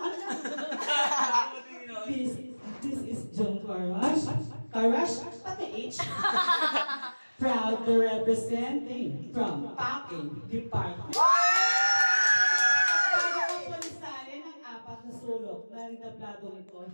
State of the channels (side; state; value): both; inverted; correlation -1.00